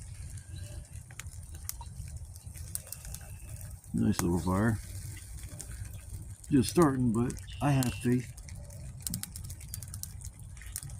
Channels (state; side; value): identical; both; correlation 1.00